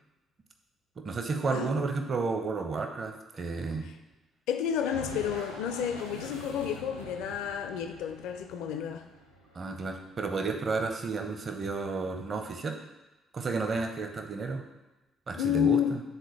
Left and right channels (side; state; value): both; normal; correlation 0.58